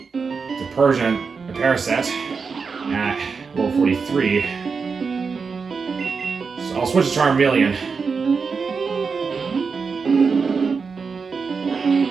The Persian, a Parasect at level 43. So I'll switch to Charmeleon.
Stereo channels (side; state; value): left; quieter; 5.2 dB